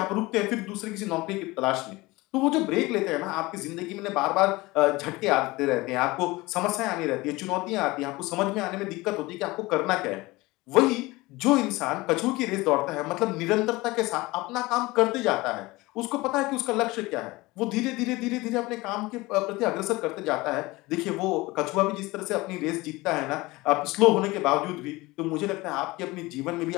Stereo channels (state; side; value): quieter; right; 21.3 dB